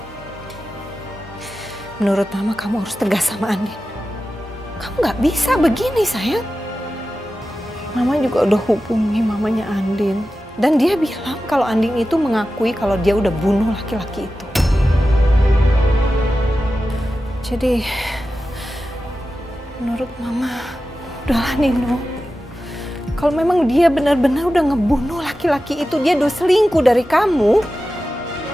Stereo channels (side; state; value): both; normal; correlation 0.93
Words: menurut Mama kamu harus tegas sama Andin. Kamu nggak bisa begini, sayang. Mama juga udah hubungi mamanya Andin. Dan dia bilang kalau Andin itu mengakui kalau dia udah bunuh laki-laki itu. Jadi, menurut Mama, udahlah Nino. Kalau memang dia benar-benar udah ngebunuh laki-laki itu, dia udah selingkuh dari kamu,